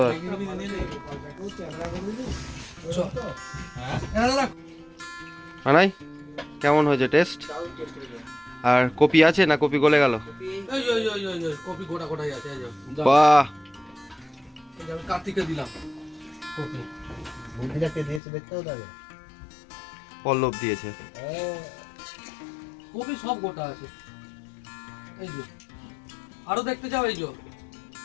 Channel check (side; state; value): right; drops out; at 18.2 s